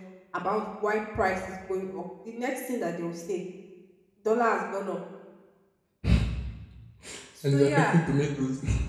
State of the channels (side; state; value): both; identical; correlation 1.00